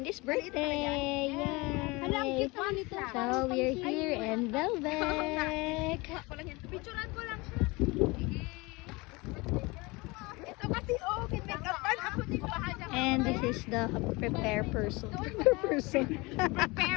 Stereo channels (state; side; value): quieter; right; 24.6 dB